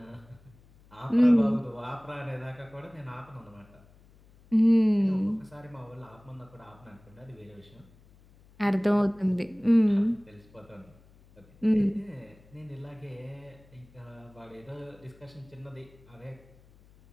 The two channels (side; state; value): left; noise; hum, 27 dB below the sound